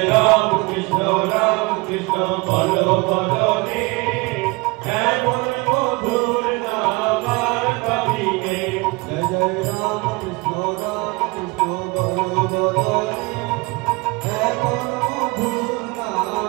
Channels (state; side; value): quieter; left; 25.3 dB